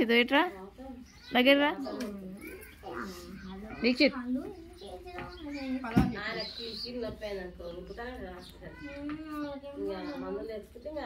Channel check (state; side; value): identical; both; correlation 1.00